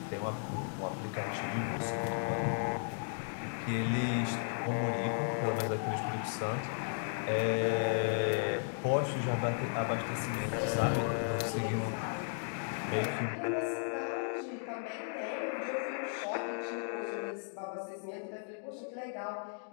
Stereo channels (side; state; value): right; silent; digital silence